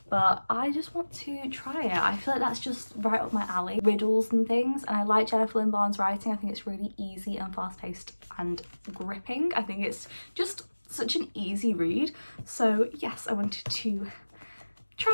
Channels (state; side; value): inverted; both; correlation -1.00